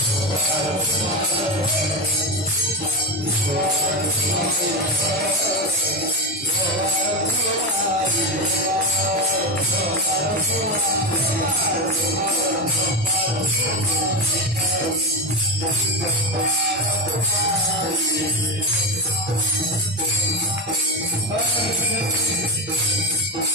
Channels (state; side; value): normal; both; correlation 0.15